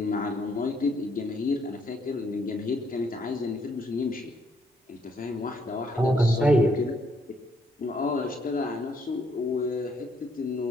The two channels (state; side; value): normal; both; correlation 0.71